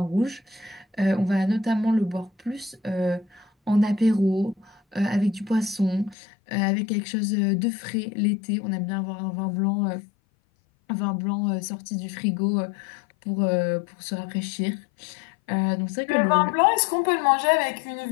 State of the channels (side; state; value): right; drops out; at 6.2 s